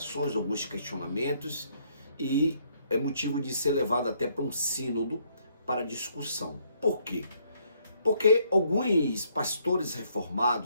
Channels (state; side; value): inverted; both; correlation -0.69